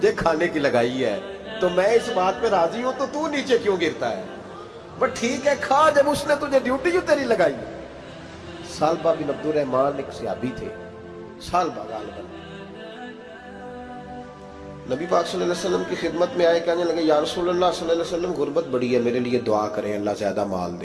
کھانے کی لگائی ہے تو میں اس بات پہ راضی ہوں، تو نیچے کیوں گرتا ہے؟ بٹ ٹھیک ہے کھا، جب اس نے تجھے ڈیوٹی جو تیری لگائی ہے۔ سالبہ بن عبد الرحمن ایک صحابی تھے، سالبہ غالباً نبی پاک صلی اللہ علیہ وسلم کی خدمت میں آئے، کہنے لگے یا رسول اللہ صلی اللہ علیہ وسلم غربت بڑی ہے، میرے لیے دعا کریں اللہ زیادہ مال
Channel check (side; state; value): both; identical; correlation 1.00